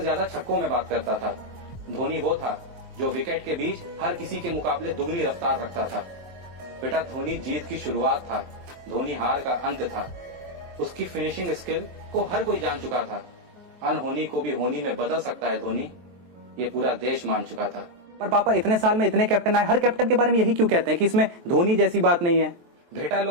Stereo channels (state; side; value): late; left; 23 ms